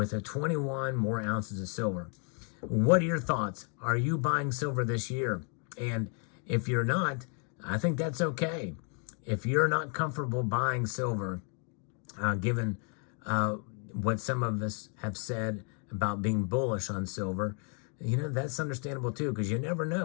21 more ounces of silver. What are your thoughts? Are you buying silver this year? And if you're not, I think that's okay. If you're not comfortable buying silver, given what some of us have said about being bullish on silver, that's understandable too, because you never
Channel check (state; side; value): quieter; right; 39.5 dB